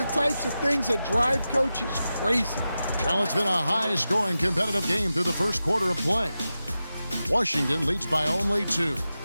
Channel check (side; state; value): both; inverted; correlation -0.92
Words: types of things that drive coaches crazy. Well, it's been a high-scoring competitive game through the first quarter of play. Washington leads by only 2.